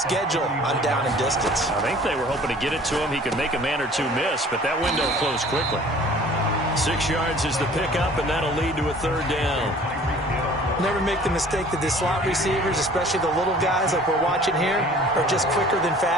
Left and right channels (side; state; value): both; normal; correlation 0.50